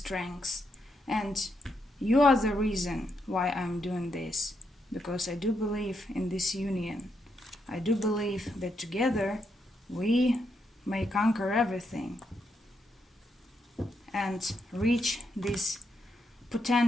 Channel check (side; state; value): both; normal; correlation 0.80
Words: and you are the reason why I'm doing this, because I do believe in this union. I do believe that together we may conquer everything and reach this